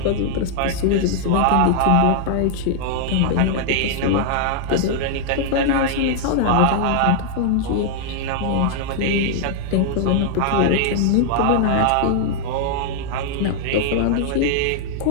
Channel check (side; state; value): both; different; correlation -0.01